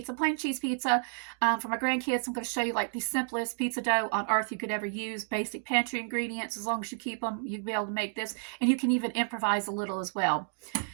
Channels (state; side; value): silent; left; digital silence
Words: plain cheese pizza for my grandkids. I'm going to show you like the simplest pizza dough on earth you could ever use. Basic pantry ingredients. As long as you keep them, you'll be able to make this. And you can even improvise a little as well,